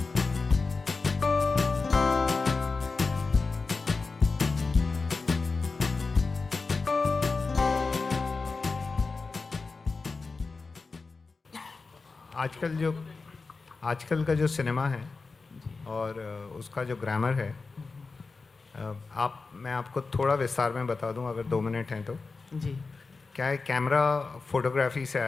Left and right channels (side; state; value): right; quieter; 4.2 dB